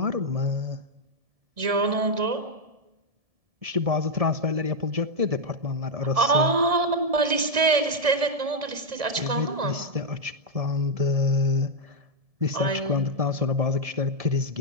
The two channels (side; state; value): left; late; 1.7 ms